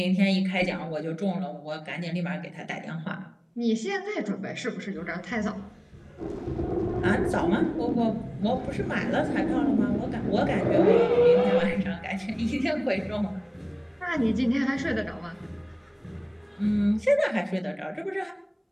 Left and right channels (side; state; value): both; identical; correlation 1.00